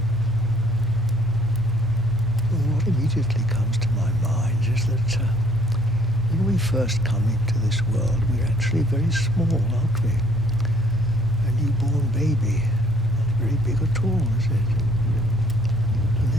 Well, what immediately comes to my mind is that when we first come into this world, we're actually very small, aren't we? A newborn baby, not very big at all, is it? And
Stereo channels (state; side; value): normal; both; correlation 0.61